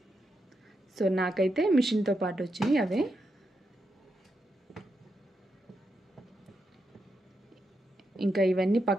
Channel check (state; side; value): normal; both; correlation 0.84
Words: సో నాకైతే మిషన్తో పాటు వచ్చినాయి అవే. ఇంకా ఇవన్నీ